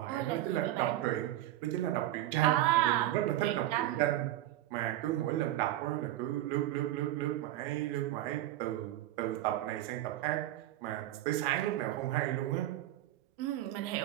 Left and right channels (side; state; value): left; quieter; 14.6 dB